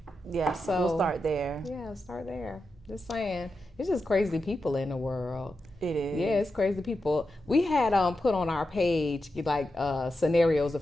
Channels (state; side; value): normal; both; correlation 0.89